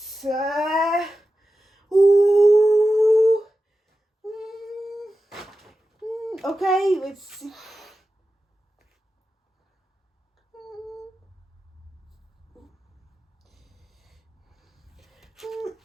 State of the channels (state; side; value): normal; both; correlation 0.92